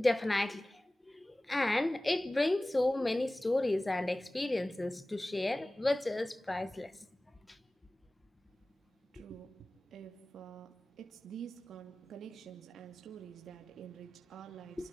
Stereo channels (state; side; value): normal; both; correlation 0.97